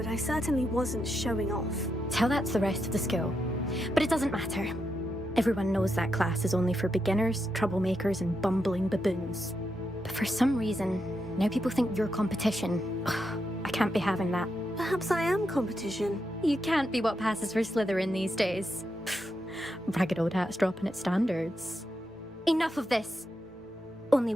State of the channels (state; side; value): normal; both; correlation 0.84